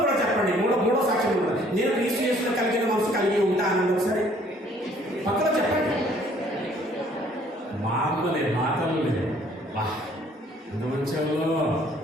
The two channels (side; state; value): both; normal; correlation 0.60